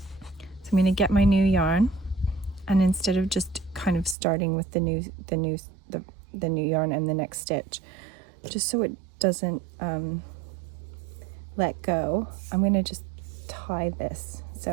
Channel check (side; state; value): left; drops out; at 4.2 s